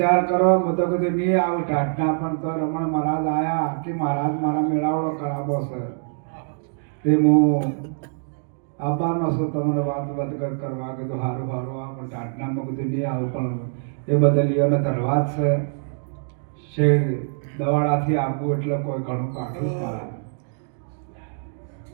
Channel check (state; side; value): silent; left; digital silence